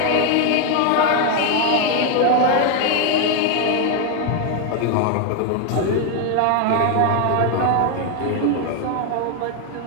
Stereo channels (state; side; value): different; both; correlation 0.01